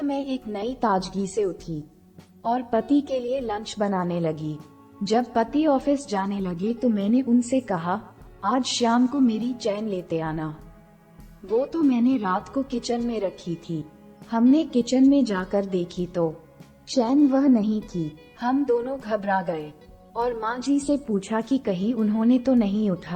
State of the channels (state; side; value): identical; both; correlation 1.00